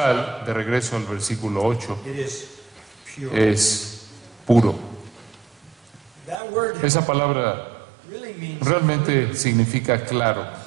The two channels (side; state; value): left; drops out; at 6.4 s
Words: de regreso al versículo 8, it is pure. es puro. That word Esa palabra really means realmente significa claro,